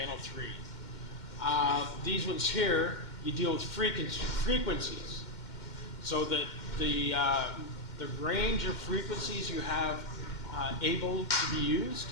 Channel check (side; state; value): right; late; 2.1 ms